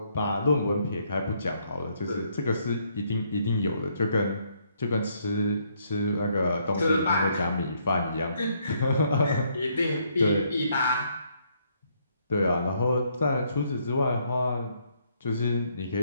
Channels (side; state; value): both; inverted; correlation -0.71